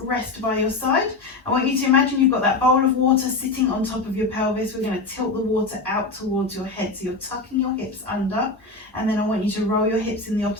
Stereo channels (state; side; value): quieter; right; 3.5 dB